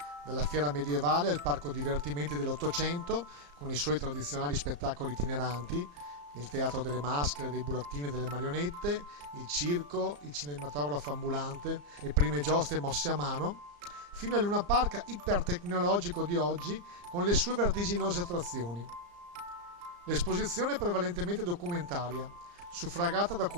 dalla fiera medievale al parco divertimenti dell'Ottocento, con i suoi tradizionali spettacoli itineranti, il teatro delle maschere, dei burattini e delle marionette, il circo, il cinematografo ambulante, le prime giostre mosse a mano, fino al Luna Park ipertecnologico di oggi con le sue vertiginose attrazioni. L'esposizione è prevalentemente documentaria, suffragata da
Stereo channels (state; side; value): late; left; 34 ms